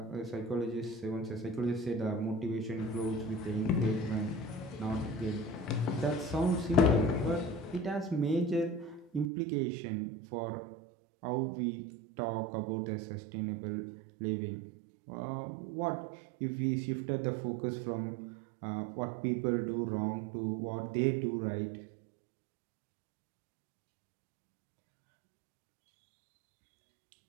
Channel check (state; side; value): drops out; left; at 9.2 s